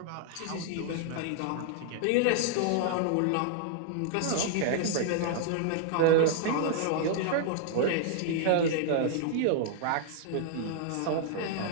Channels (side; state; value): both; different; correlation -0.01